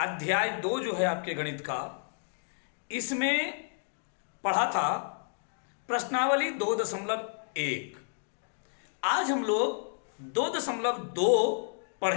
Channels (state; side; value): silent; right; digital silence